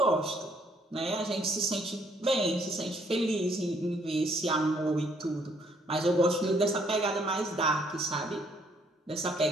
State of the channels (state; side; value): normal; both; correlation 0.67